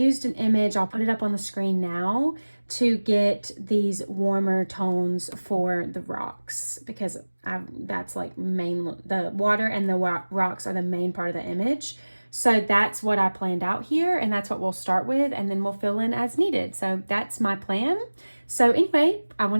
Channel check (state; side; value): inverted; both; correlation -1.00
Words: an image, I'll put it up on the screen now, to get these warmer tones for the rocks, because that's like the water and the rocks are the main part of the image. So that's what I planned out here, and that's what we'll start with, and then we'll fill in as needed. So that's my plan. So anyway, I want